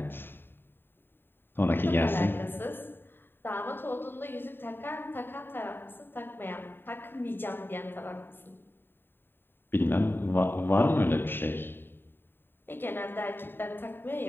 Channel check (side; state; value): right; late; 0.099 ms